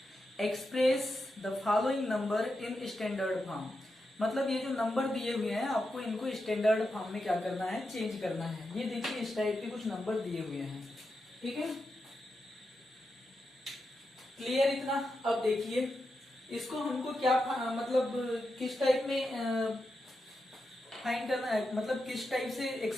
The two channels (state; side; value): normal; both; correlation 0.87